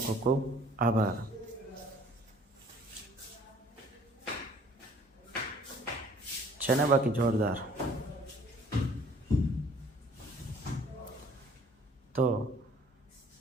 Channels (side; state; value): both; normal; correlation 0.55